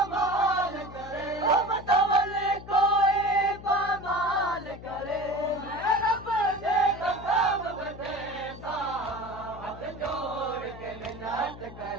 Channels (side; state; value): left; noise; hum, 15 dB below the sound